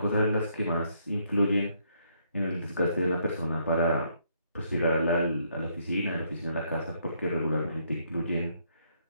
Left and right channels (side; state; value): both; inverted; correlation -0.71